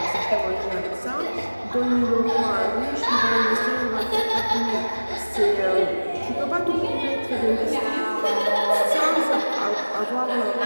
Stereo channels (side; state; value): both; inverted; correlation -1.00